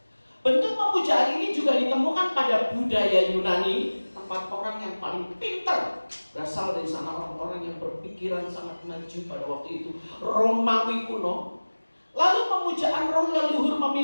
Bentuk pemujaan ini juga ditemukan pada budaya Yunani, tempat orang yang paling pintar berasal dari sana, orang-orang yang berpikiran sangat maju pada waktu itu, Romawi kuno. Lalu pemujaan roh leluhur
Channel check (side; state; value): both; inverted; correlation -1.00